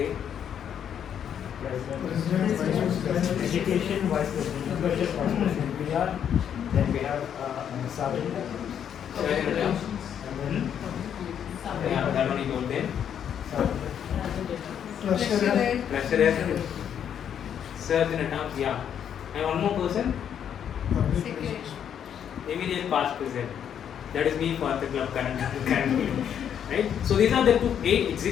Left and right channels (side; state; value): right; quieter; 8.9 dB